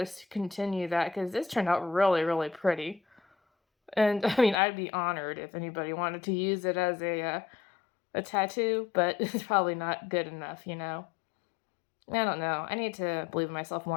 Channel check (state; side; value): drops out; right; at 4.5 s